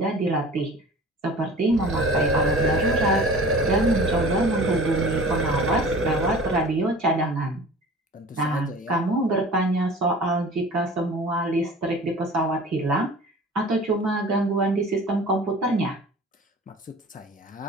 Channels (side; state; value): both; normal; correlation 0.42